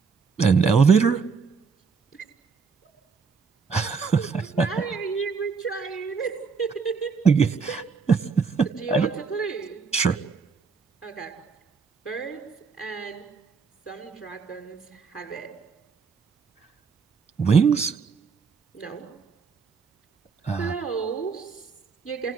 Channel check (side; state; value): left; quieter; 5.4 dB